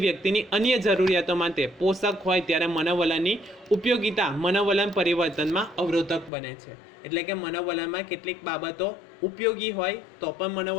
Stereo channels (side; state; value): right; drops out; at 6.3 s